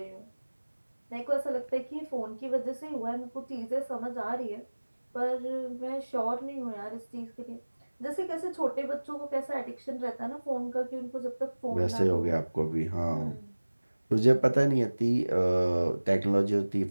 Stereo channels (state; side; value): inverted; both; correlation -1.00